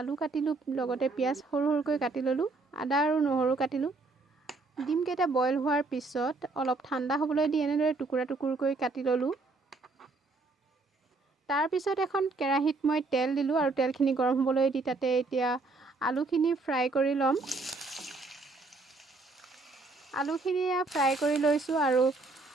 কাটিলোঁ, লগতে পিঁয়াজ সৰু সৰুকৈ কাটি ল'লোঁ, আদা আৰু নহৰু কাটিলোঁ। ডিমকেইটা বইল হোৱাৰ পিছত অলপ ঠাণ্ডা হ'বলৈ দি এনেদৰে টুকুৰা টুকুৰকৈ কাটি ল'লোঁ। তাৰপিছত এখন কেৰাহীত মই তেল দিলোঁ আৰু তেলখিনি গৰম হ'বলৈ দি তাতে এতিয়া আলুখিনি ফ্ৰাই কৰি ল'ম। আলুখিনি ফ্ৰাই কৰি লৈছোঁ আৰু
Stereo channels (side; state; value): left; quieter; 3.5 dB